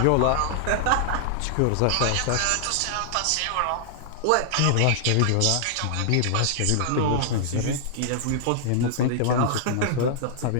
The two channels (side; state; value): both; different; correlation -0.01